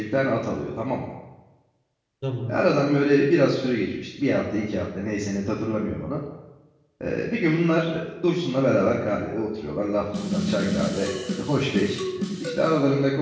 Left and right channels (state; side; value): identical; both; correlation 1.00